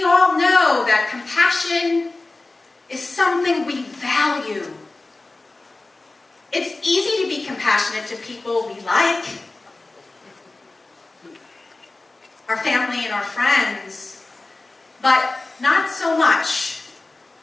all know that compassion is something we value. It's easy to be compassionate to people we like, our family and our friends, but not so much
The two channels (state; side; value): quieter; right; 3.2 dB